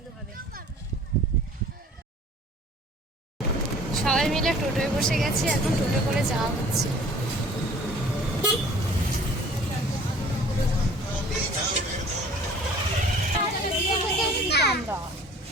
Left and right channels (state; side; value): normal; both; correlation 0.49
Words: হবে। সবাই মিলে টোটোয় বসে গেছি, এখন টোটো করে যাওয়া হচ্ছে।